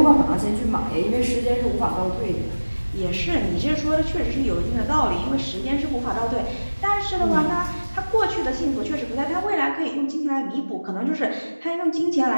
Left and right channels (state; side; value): inverted; both; correlation -1.00